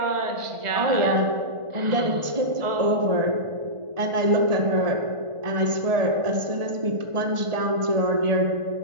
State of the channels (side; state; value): left; late; 1.4 ms